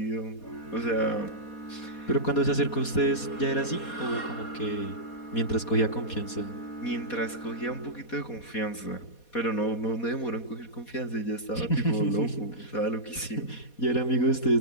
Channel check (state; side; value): late; right; 4.2 ms